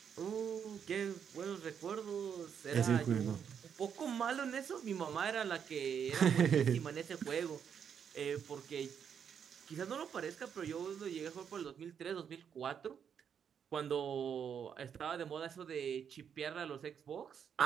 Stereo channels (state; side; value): quieter; left; 7.7 dB